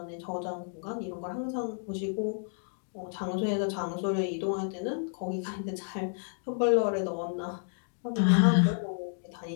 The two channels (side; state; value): right; silent; 57 dB below the other